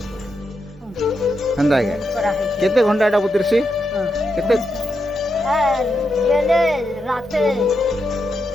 হন্দাই করা হয় কেতে ঘন্টা এটা বুতিরছি কেতে হ্যাঁ গেলে রাতে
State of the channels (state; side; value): normal; both; correlation 0.84